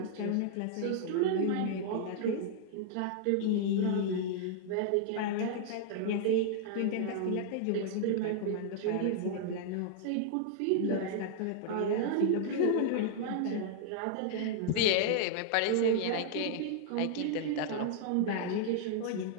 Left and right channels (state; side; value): different; both; correlation -0.01